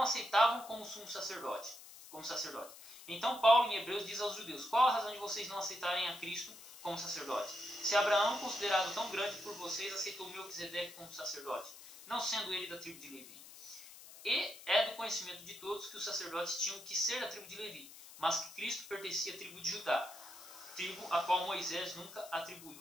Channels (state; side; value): noise; left; hiss, 17 dB below the sound